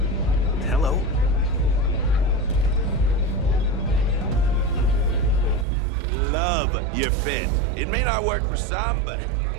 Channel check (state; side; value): drops out; left; at 5.7 s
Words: Hello. Love your fit. It may not work for some, but